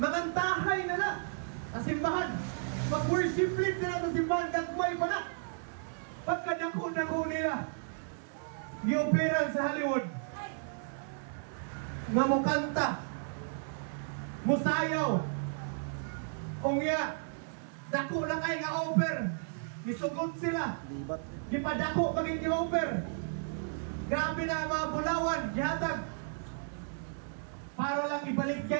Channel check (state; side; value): silent; left; digital silence